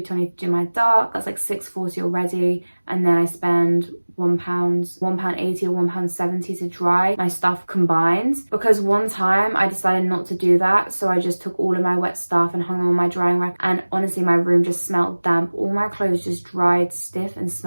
to do my dark. That's like £6.40 already. And then I spend £1.80 or £1.70 to dry my stuff combined, because one time I decided not to do that, so I just took all of my wet stuff and hung them on my drying rack, and honestly my room just smelled damp. All my clothes just dried stiff and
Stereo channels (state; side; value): inverted; both; correlation -1.00